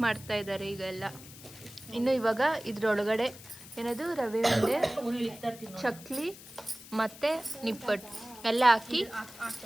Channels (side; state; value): left; noise; hiss, 17 dB below the sound